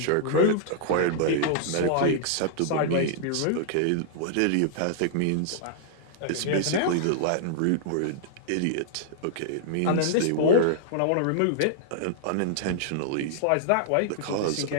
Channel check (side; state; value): both; different; correlation -0.01